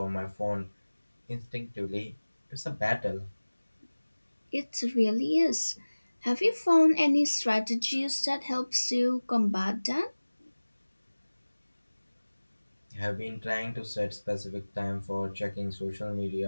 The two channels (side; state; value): both; inverted; correlation -1.00